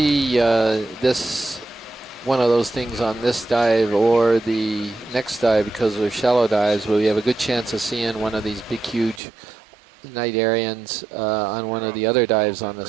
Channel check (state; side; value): drops out; left; at 9.2 s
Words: one of those things on this dive or the next dive because they're shallow dives, but we have a good chance of seeing one of these big, huge night Arians on one of the other dives on